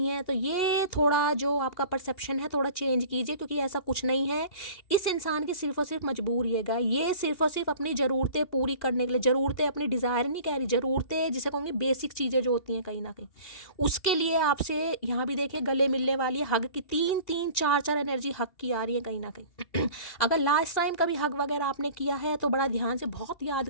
है, तो ये थोड़ा जो आपका परसेप्शन है थोड़ा चेंज कीजिए, क्योंकि ऐसा कुछ नहीं है। इस इंसान की सिर्फ और सिर्फ मजबूरी है, ये सिर्फ और सिर्फ अपनी ज़रूरतें पूरी करने के लिए, ज़रूरतें अपनी डिज़ायर नहीं कह रही, ज़रूरतें जिसे कहूँगी बेसिक चीज़ें जो होती हैं कहीं ना कहीं, उसके लिए आपसे यहाँ भी देखिए गले मिलने वाली है। हग की 3-3, 4-4 एनर्जी हग की आ रही है कहीं ना कहीं। अगर लास्ट टाइम कभी हग वगैरह आपने किया है तो बड़ा ध्यान से बहुत याद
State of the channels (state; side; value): late; right; 2.7 ms